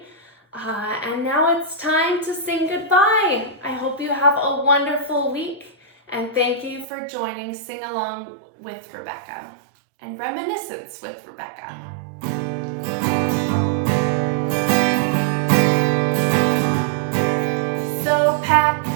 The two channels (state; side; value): drops out; left; at 6.9 s